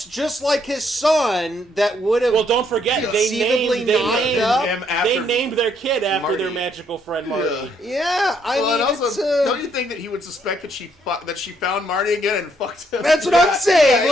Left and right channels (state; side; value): normal; both; correlation 0.71